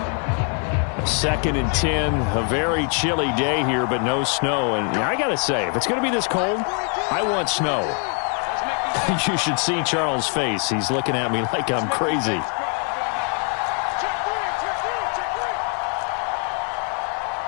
Second and 10, a very chilly day here, but no snow. And I got to say, if it's going to be this cold, I want snow. You should see Charles' face. He's looking at me like I'm crazy.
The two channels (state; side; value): quieter; right; 37.5 dB